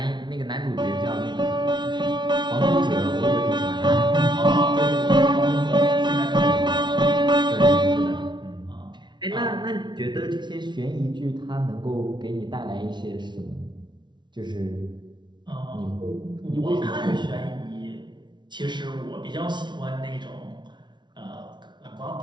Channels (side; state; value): left; late; 0.22 ms